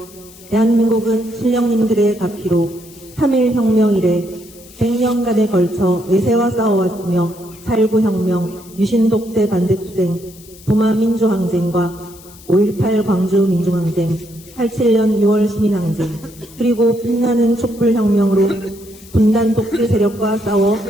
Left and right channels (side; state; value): left; noise; hiss, 22 dB below the sound